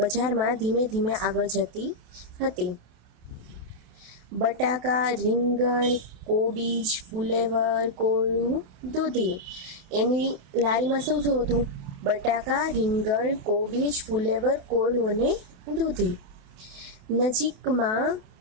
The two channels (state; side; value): late; left; 27 ms